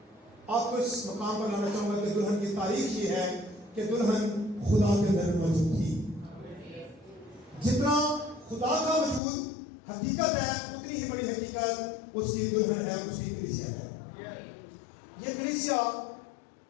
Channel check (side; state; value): right; drops out; at 9.2 s